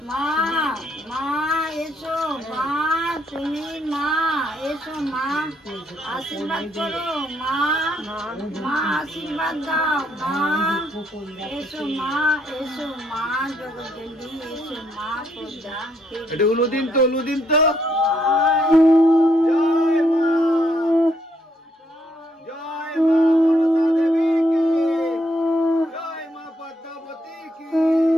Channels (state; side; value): normal; both; correlation 0.72